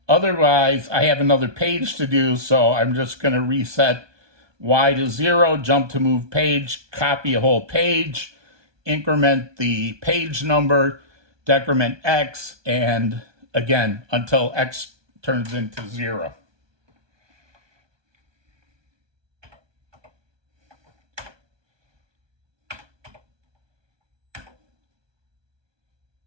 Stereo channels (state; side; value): late; left; 1.2 ms